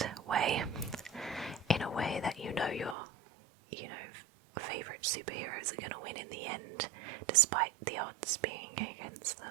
way, in a way that your favourite superheroes are going to win in the end, despite the odds being against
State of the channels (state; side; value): drops out; left; at 3.0 s